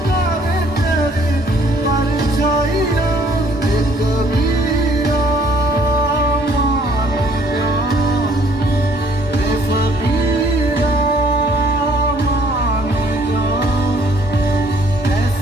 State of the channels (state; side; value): normal; both; correlation 0.61